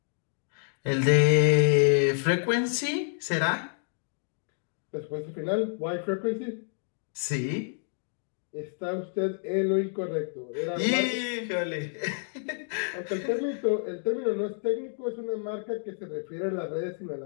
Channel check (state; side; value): silent; right; digital silence